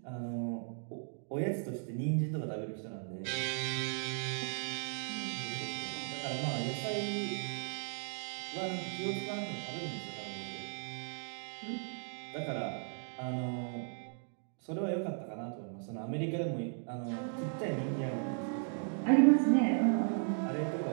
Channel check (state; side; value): silent; left; 53 dB below the other